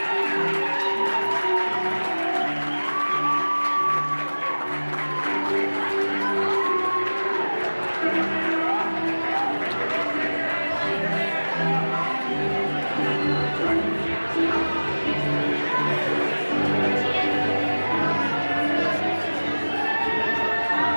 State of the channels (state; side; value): inverted; both; correlation -1.00